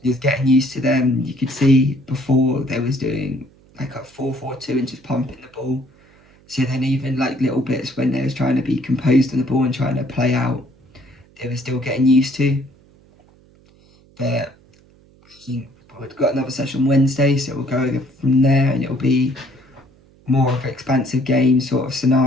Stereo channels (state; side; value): noise; right; hum, 29 dB below the sound